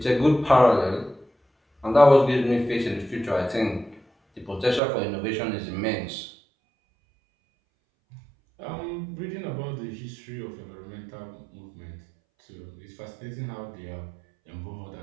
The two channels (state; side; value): drops out; left; at 4.8 s